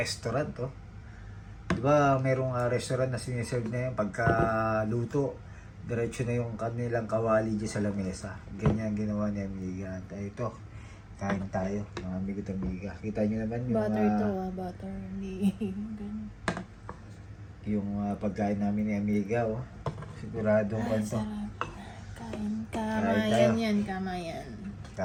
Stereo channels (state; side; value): identical; both; correlation 1.00